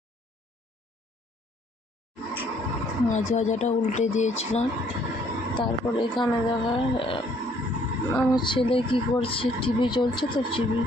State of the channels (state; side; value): normal; both; correlation 0.63